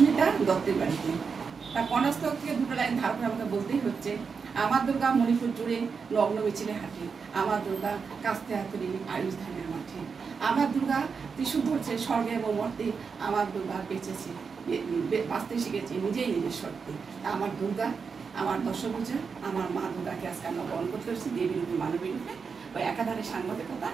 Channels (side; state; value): left; quieter; 5.5 dB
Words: দত্তের বাড়িতে। তার কনাস্তক থেকে দুটো লাইন ধার করে আমাকে বলতেই হচ্ছে, আমার দুর্গা মণিপুর জুড়ে নগ্ন মিছিলে হাঁটে, আমার দুর্গা কাস্তে হাতুড়ি আয়ুষ ধানের মাঠে, আমার দুর্গা ত্রিশূল ধরছে স্বর্গে এবং মর্তে, আমার দুর্গা বেঁচেছে বাঁচতে শিখেছে নিজেই নিজের শর্তে। আমার দুর্গা, আমার দশভূজা, আমার মা দুর্গাকে আজকে আমরা বরণ করতে পারছি দেবীর রূপে মানবী রূপে। ওই একাধারে সাংবাদিকতা,